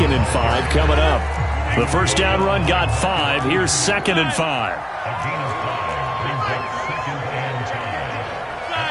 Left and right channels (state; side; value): identical; both; correlation 1.00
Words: and 5 coming up. The first down run got 5. Here's 2nd and 5.